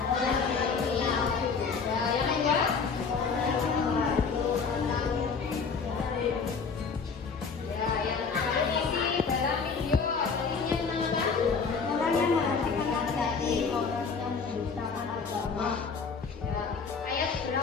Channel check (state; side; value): quieter; right; 5.3 dB